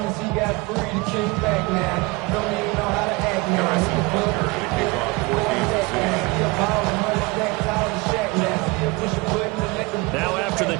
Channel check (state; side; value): quieter; left; 24.8 dB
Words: Now after the